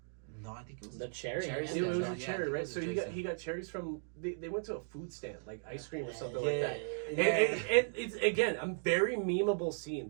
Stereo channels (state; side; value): silent; left; digital silence